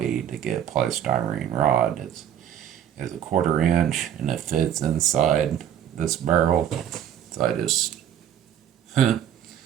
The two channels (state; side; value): quieter; left; 10.0 dB